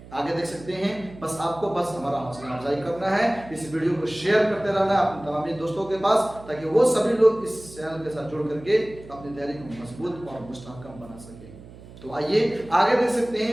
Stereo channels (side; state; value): right; noise; hum, 18 dB below the sound